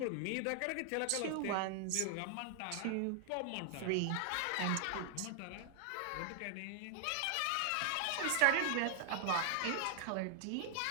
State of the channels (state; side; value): different; both; correlation 0.00